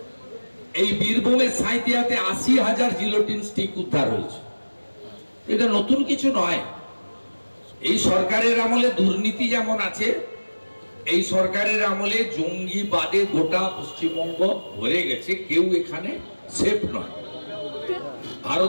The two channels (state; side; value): inverted; both; correlation -1.00